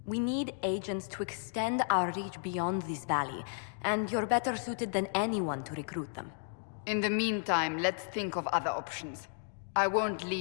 We need agents to extend our reach beyond this valley, and you're better suited than anyone to recruit them. In the meantime, let's think of other options. I won't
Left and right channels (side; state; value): right; silent; digital silence